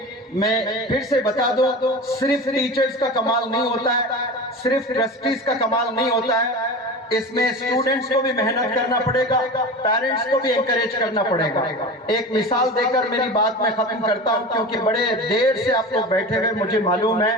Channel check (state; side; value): normal; both; correlation 0.31